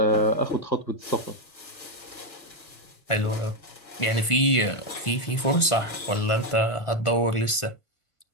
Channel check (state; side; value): late; right; 1.5 ms